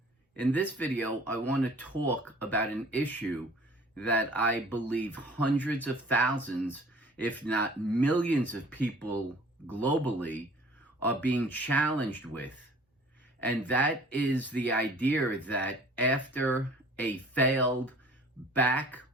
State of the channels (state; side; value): normal; both; correlation 0.50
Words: In this video, I want to talk about an issue that I believe hundreds of thousands, if not millions of people globally are being challenged with. And that is the idea that after a failed back